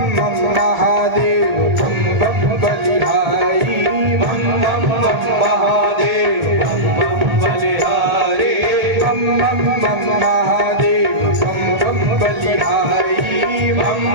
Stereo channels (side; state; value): left; late; 1.4 ms